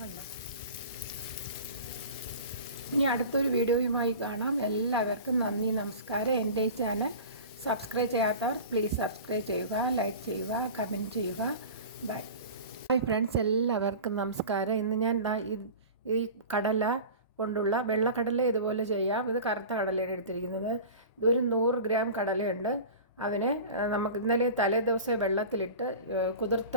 ഇനി അടുത്തൊരു വീഡിയോയുമായി കാണാം. എല്ലാവർക്കും നന്ദി, നമസ്കാരം. എൻ്റെ ചാനൽ സബ്സ്ക്രൈബ് ചെയ്യാത്തവർ പ്ലീസ് സബ്സ്ക്രൈബ് ചെയ്യുക, ലൈക്ക് ചെയ്യുക, കമൻറ്റ് ചെയ്യുക. ബൈ ബൈ ഫ്രണ്ട്സ്, എല്ലാവർക്കും നമസ്കാരം. ഇന്ന് ഞാൻ ഈ കടല കൊണ്ടുള്ള വെള്ളക്കടല ഇതുപോലെ ചെയ്യാം. ഇത് കറുത്ത കടലയാണ് എടുത്തിരിക്കുന്നത്. ഇതൊരു 100 ഗ്രാം കടലയുണ്ട്. അതിനെ നമുക്ക് ഇന്നലെ തലേ ദിവസം വെള്ളത്തിലിട്ട്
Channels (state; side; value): inverted; both; correlation -0.36